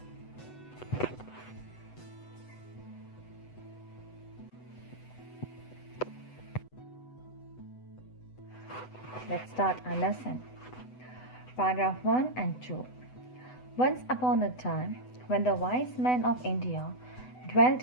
Let's start our lesson. Paragraph 1 and 2. Once upon a time, when the wise men of India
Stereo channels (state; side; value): late; right; 8.0 ms